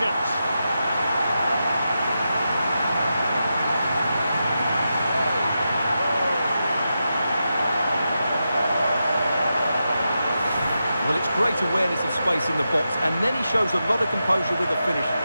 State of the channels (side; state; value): both; inverted; correlation -0.88